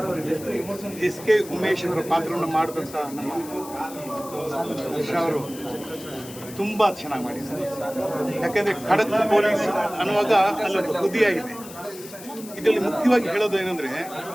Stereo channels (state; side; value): noise; left; hiss, 16 dB below the sound